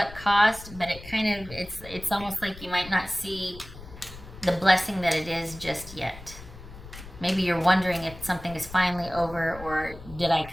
cost, but it kind of, it's almost like you might not see the blessing that it is just yet. Maybe you're wondering if something is finally over, or did I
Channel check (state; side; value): noise; left; rumble, 16 dB below the sound